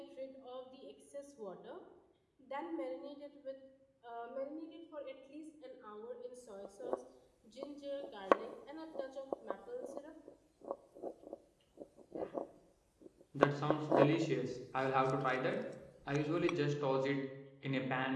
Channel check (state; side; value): identical; both; correlation 1.00